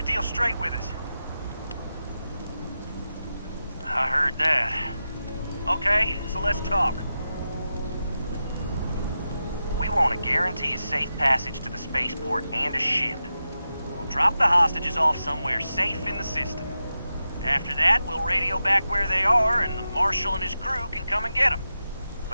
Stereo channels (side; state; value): both; inverted; correlation -0.90